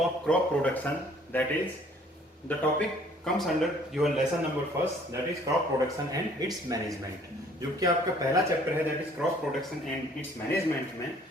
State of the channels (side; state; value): both; normal; correlation 0.57